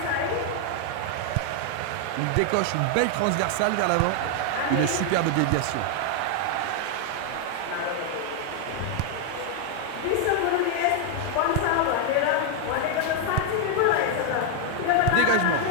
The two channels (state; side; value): different; both; correlation 0.00